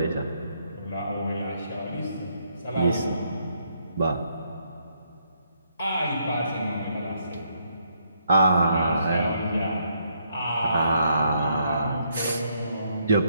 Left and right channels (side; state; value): both; inverted; correlation -0.73